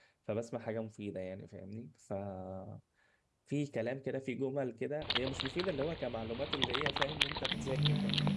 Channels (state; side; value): identical; both; correlation 1.00